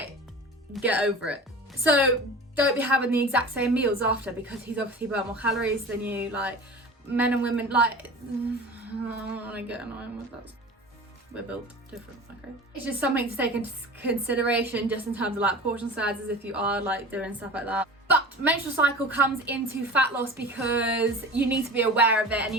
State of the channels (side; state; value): both; normal; correlation 0.36